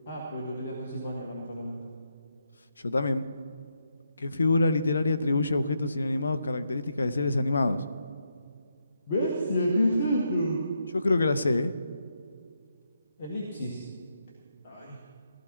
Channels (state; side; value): inverted; both; correlation -0.80